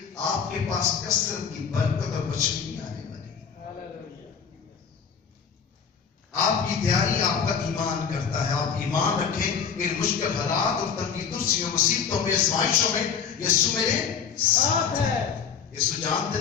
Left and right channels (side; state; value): right; quieter; 6.9 dB